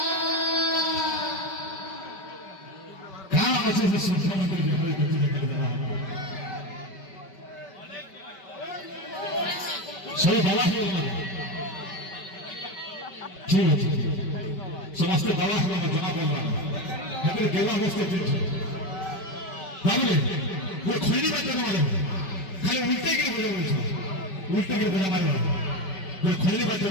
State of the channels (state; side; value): late; right; 5.2 ms